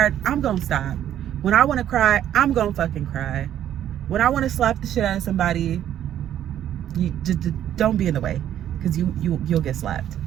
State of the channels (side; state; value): left; quieter; 11.0 dB